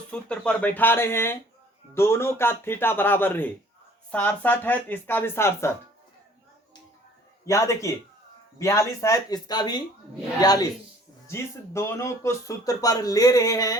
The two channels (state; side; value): normal; both; correlation 0.54